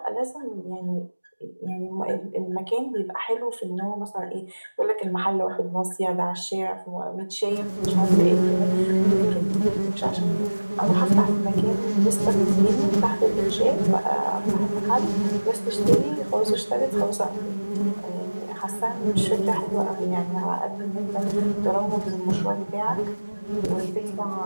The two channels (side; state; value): both; inverted; correlation -1.00